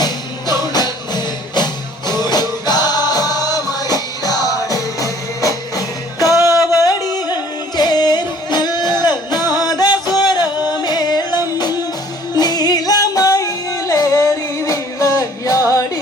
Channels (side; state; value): both; normal; correlation 0.55